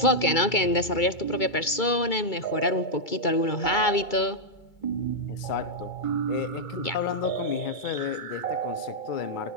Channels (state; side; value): late; right; 2.3 ms